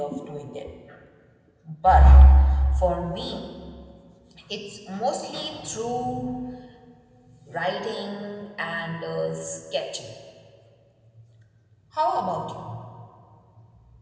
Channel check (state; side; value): identical; both; correlation 1.00